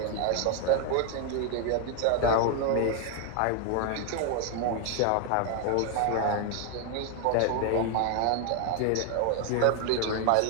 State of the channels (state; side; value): different; both; correlation 0.01